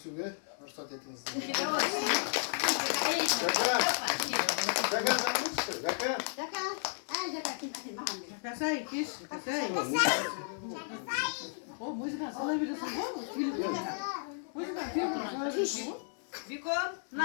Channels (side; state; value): right; silent; digital silence